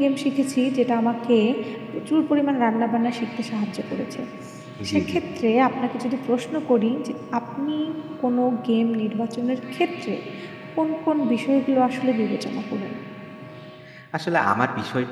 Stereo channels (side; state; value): both; identical; correlation 1.00